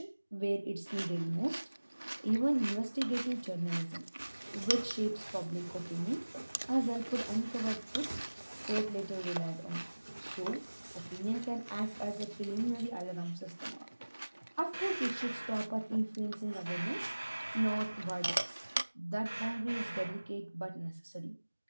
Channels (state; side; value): inverted; both; correlation -1.00